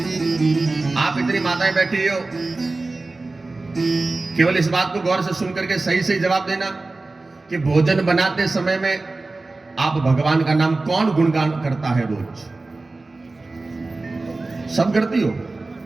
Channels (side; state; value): left; quieter; 3.4 dB